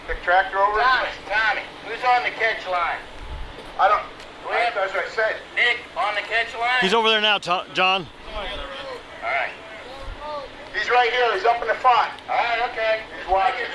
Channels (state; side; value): identical; both; correlation 1.00